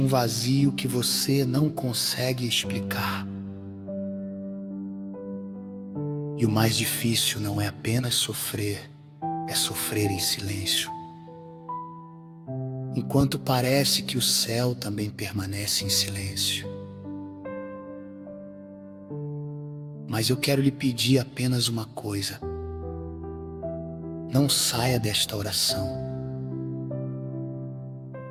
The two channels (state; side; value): identical; both; correlation 1.00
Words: vazio que você não consegue explicar. E o mais difícil não é apenas sofrer, é sofrer em silêncio. Enquanto parece que o céu também permanece em silêncio. Mas eu quero lhe pedir apenas uma coisa: não saia desta oração.